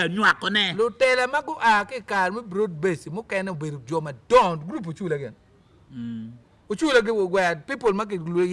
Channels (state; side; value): identical; both; correlation 1.00